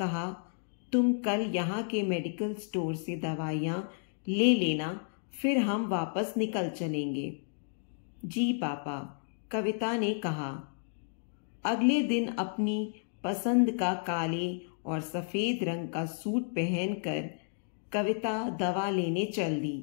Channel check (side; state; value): right; silent; digital silence